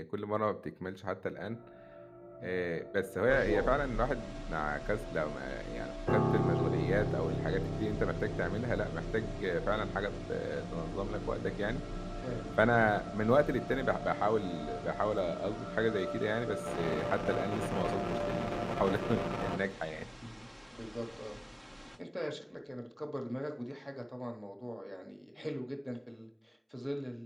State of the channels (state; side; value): identical; both; correlation 1.00